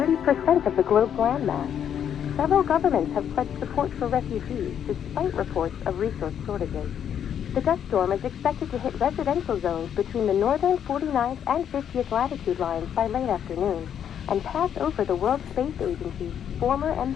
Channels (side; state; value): right; quieter; 8.9 dB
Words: of the globe's landmass. Several governments have pledged support for refugees despite reports of resource shortages. The dust storm is expected to hit residential zones between the northern 49th and 50th latitude lines by late afternoon and pass over the World Space Agency's former